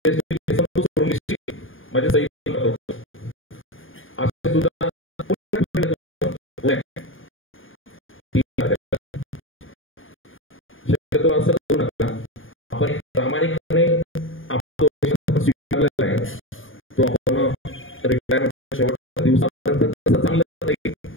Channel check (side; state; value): right; late; 0.58 ms